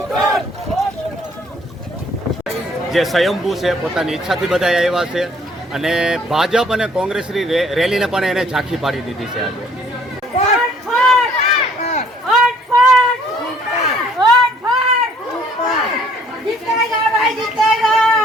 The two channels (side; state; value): both; normal; correlation 0.60